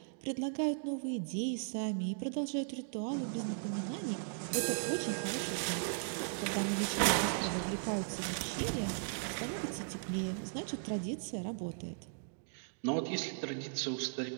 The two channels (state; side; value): silent; left; digital silence